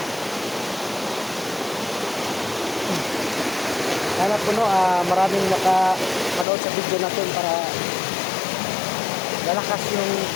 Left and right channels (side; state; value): right; drops out; at 6.5 s